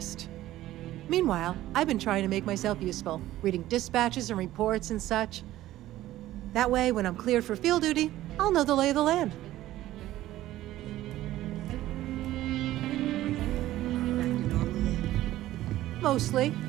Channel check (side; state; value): left; quieter; 14.8 dB